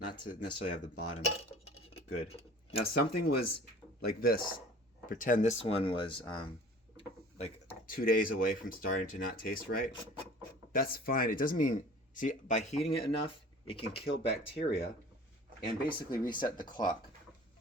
to necessarily have the bottom good. Now something was like this. Pretend this one was like 2 days away from starting to not taste right. That's fine. It doesn't mean, see, by heating it enough, it can kill bacteria and basically reset the clock,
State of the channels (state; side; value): normal; both; correlation 0.45